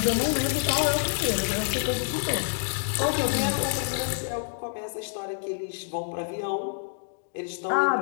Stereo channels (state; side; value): silent; right; digital silence